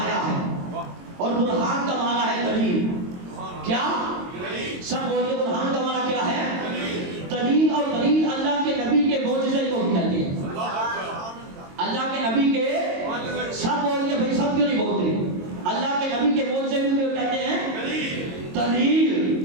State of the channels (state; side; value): late; left; 22 ms